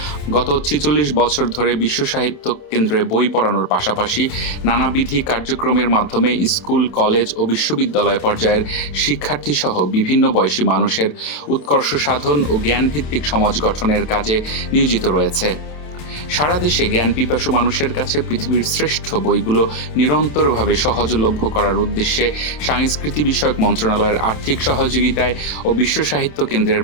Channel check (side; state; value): right; late; 27 ms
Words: গত ৪৬ বছর ধরে বিশ্ব সাহিত্য কেন্দ্রে বই পড়ানোর পাশাপাশি নানাবিধি কার্যক্রমের মাধ্যমে স্কুল, কলেজ ও বিশ্ববিদ্যালয় পর্যায়ের শিক্ষার্থী সহ বিভিন্ন বয়সী মানুষের উৎকর্ষ সাধন ও জ্ঞানভিত্তিক সমাজ গঠনের কাজে নিয়োজিত রয়েছে। সারা দেশে জ্ঞান পিপাসু মানুষের কাছে পৃথিবীর শ্রেষ্ঠ বইগুলো নিরন্তরভাবে সহজলভ্য করার উদ্দেশ্যে সাংস্কৃতি বিষয়ক মন্ত্রণালয়ের আর্থিক সহযোগিতায় ও বিশ্ব সাহিত্য কেন্দ্রের